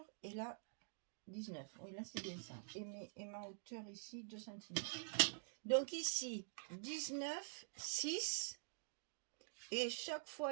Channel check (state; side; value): silent; left; digital silence